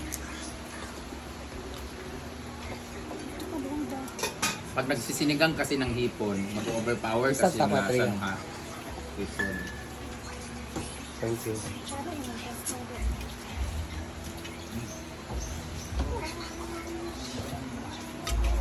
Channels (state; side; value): identical; both; correlation 1.00